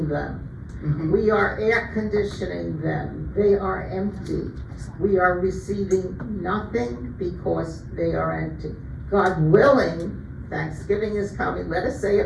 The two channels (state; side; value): identical; both; correlation 1.00